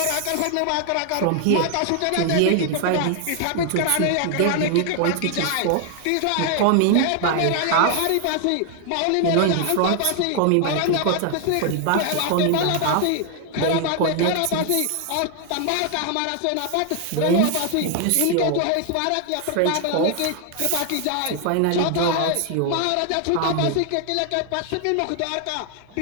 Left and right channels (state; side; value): different; both; correlation 0.00